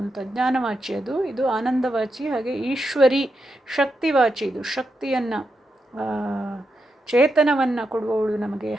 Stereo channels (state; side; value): normal; both; correlation 0.85